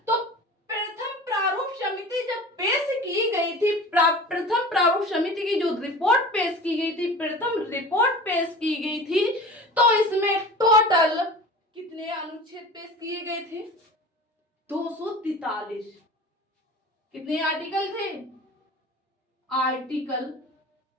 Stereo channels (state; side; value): normal; both; correlation 0.37